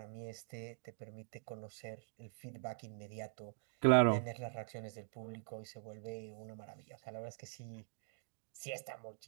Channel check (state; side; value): silent; left; digital silence